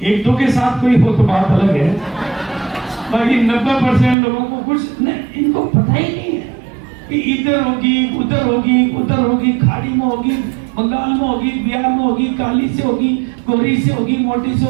एक दो के साथ कोई हो तो बात अलग है, बाकी 90% लोगों को कुछ इनको पता ही नहीं है कि इधर होगी उधर होगी उधर होगी, खाड़ी में होगी, बंगाल में होगी, बिहार में होगी, काली से होगी, गोरी से होगी, मोटी से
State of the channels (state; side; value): drops out; left; at 4.2 s